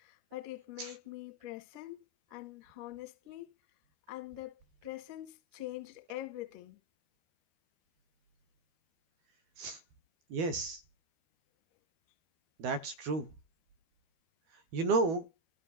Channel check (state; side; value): late; left; 12 ms